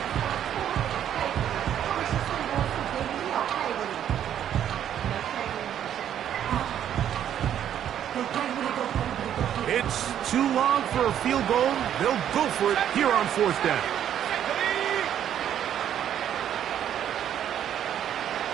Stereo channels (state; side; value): quieter; left; 10.1 dB